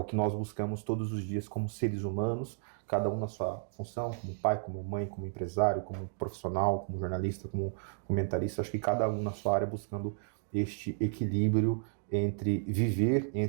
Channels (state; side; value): silent; left; digital silence